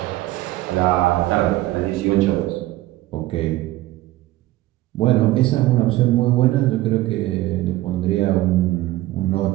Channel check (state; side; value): quieter; left; 16.7 dB